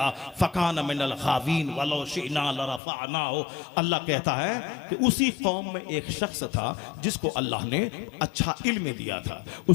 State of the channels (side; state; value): right; drops out; at 2.8 s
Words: फ़कान मिनल गावीन वलौ शिअना लरफ़अनाहु। अल्लाह कहता है कि उसी कौम में एक शख्स था जिसको अल्लाह ने अच्छा इल्म दिया था,